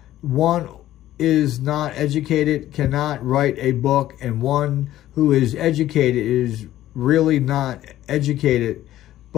One is not educated cannot write a book, and one who is educated is really not educated,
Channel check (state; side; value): quieter; right; 13.7 dB